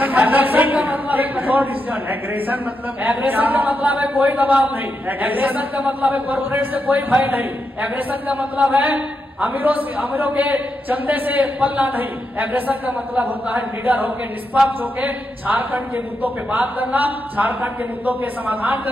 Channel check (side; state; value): both; normal; correlation 0.84